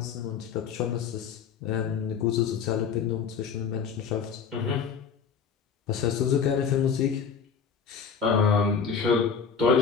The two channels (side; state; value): right; quieter; 6.5 dB